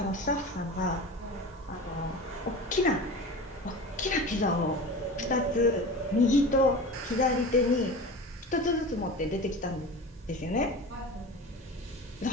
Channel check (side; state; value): both; normal; correlation 0.33